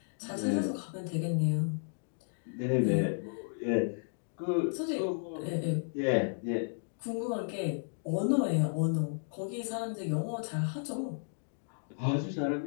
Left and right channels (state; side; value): silent; right; digital silence